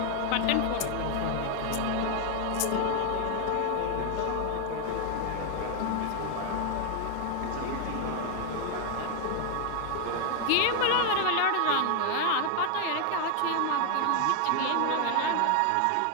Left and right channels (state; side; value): different; both; correlation 0.00